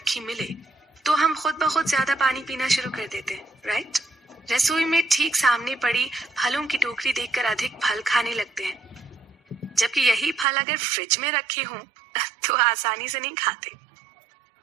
मिले, तो हम खुद ब खुद ज्यादा पानी पीना शुरू कर देते हैं, राइट? रसोई में ठीक सामने पड़ी फलों की टोकरी देखकर अधिक फल खाने लगते हैं, जबकि यही फल अगर फ्रिज में रखे हों तो आसानी से नहीं खाते।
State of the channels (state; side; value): drops out; left; at 10.5 s